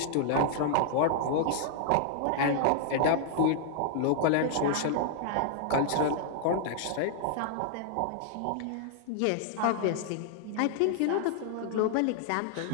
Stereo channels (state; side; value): different; both; correlation -0.01